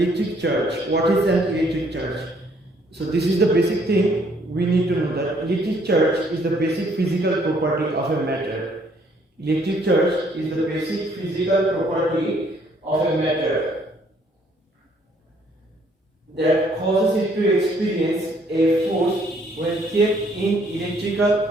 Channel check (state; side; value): normal; both; correlation 0.65